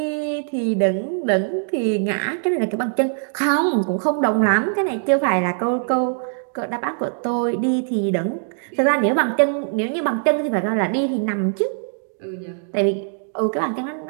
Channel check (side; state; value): left; silent; 64 dB below the other